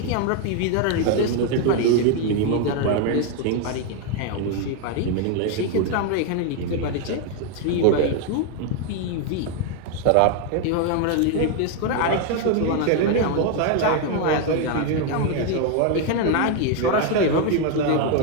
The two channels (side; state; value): both; different; correlation 0.01